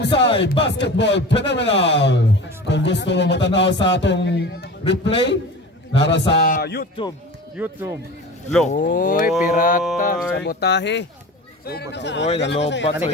Basketball Phenomenal. Kung gusto mo matanaw sa atong replay, nara sa YouTube. Oy, pirata, sabotahe. Oy, nalobat.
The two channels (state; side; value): normal; both; correlation 0.35